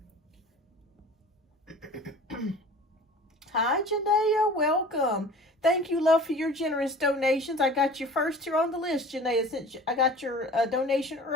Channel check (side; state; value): both; normal; correlation 0.42